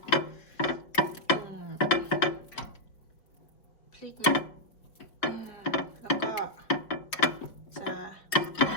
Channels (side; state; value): right; late; 4.7 ms